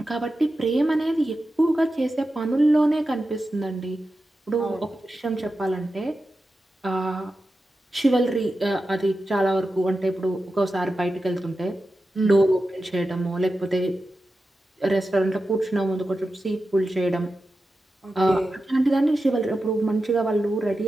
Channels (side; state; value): both; normal; correlation 0.91